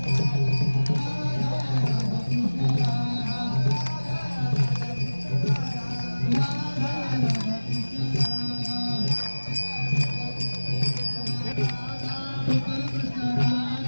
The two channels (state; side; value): inverted; both; correlation -1.00